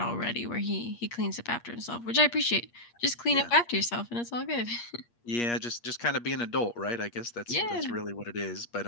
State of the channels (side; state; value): right; late; 8.5 ms